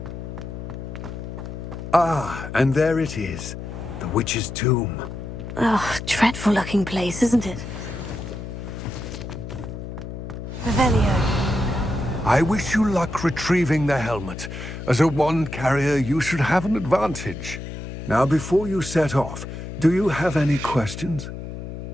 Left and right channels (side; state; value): left; noise; hum, 9 dB below the sound